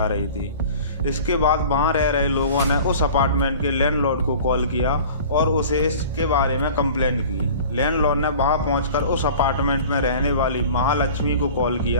रही थी। इसके बाद वहाँ रह रहे लोगों ने उस अपार्टमेंट के लैंडलॉर्ड को कॉल किया और उसे इसके बारे में कंप्लेंट की। लैंडलॉर्ड ने वहाँ पहुंचकर उस अपार्टमेंट में रहने वाली महालक्ष्मी को कॉल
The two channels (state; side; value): inverted; both; correlation -0.42